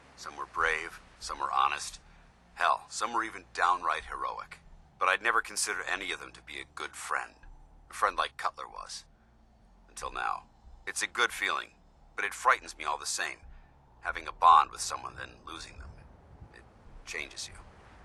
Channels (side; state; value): both; identical; correlation 1.00